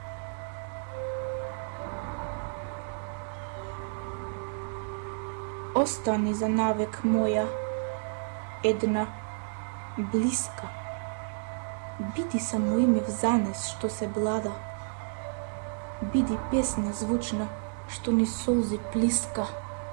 Остани за навек моја, една, блиска. Биди само име взанес што се блада. Биди песна звучна што ни солзи плиска.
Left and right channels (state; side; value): silent; left; digital silence